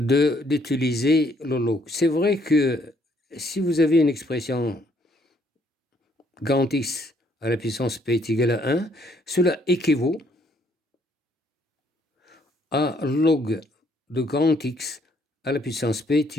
le log. C'est vrai que si vous avez une expression grand X à la puissance P est égal à 1, cela équivaut à log de grand X à la puissance P est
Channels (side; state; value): both; normal; correlation 0.67